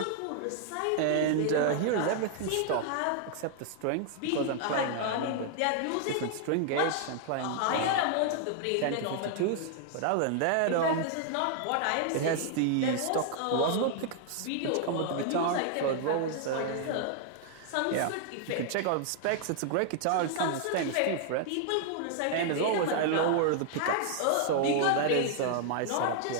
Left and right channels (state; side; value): different; both; correlation 0.00